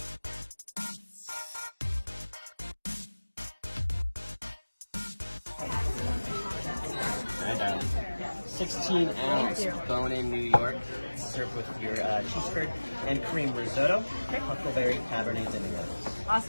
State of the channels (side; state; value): both; inverted; correlation -1.00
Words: Right, darling. 16-ounce bone-in New York, served with your cheese curd and cream risotto, huckleberry cabernet sauvignon.